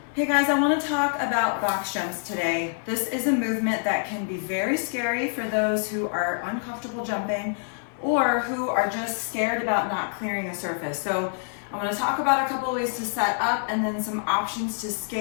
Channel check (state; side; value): silent; right; 61 dB below the other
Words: Hey guys, I want to talk about box jumps today. This is a movement that can be very scary for those who are uncomfortable jumping or who are just scared about not clearing a surface. So I want to talk about a couple of ways to set up and then some options to